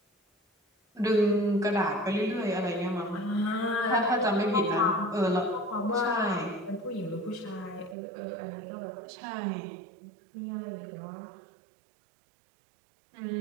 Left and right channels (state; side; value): drops out; left; at 8.0 s